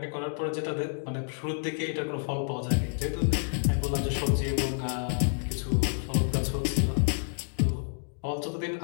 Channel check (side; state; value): right; silent; digital silence